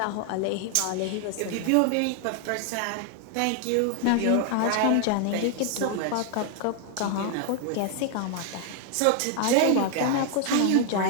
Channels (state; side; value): different; both; correlation 0.00